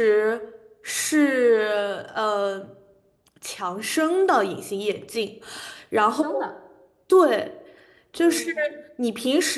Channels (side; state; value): both; identical; correlation 1.00